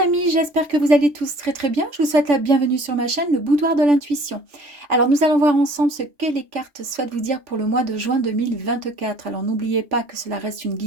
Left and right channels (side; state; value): left; late; 3.5 ms